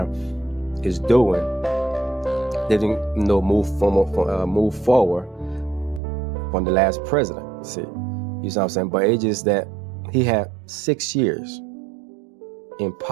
is doing didn't move forward from the last president. See, you know what I'm saying? But it's just that he had 6 years in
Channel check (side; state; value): left; drops out; at 6.0 s